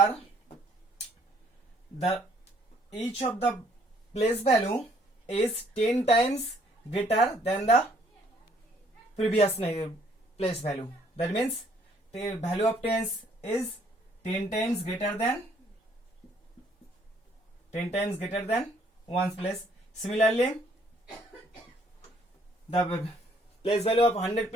each of the place value is 10 times greater than the previous place value. That means the value of tens is 10 times greater than 1's place. Similarly, the place value of 100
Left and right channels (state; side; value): normal; both; correlation 0.64